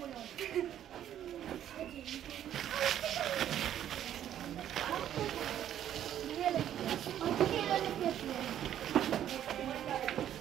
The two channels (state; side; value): quieter; left; 10.8 dB